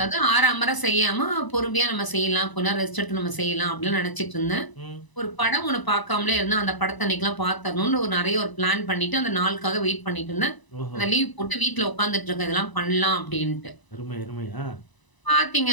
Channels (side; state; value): right; late; 1.0 ms